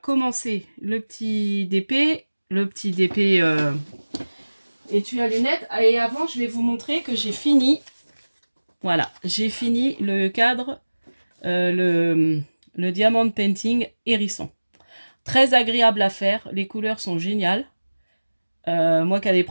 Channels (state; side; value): inverted; both; correlation -1.00